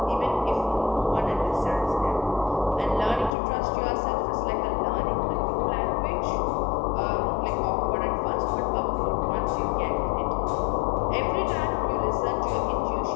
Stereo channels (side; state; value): right; drops out; at 3.3 s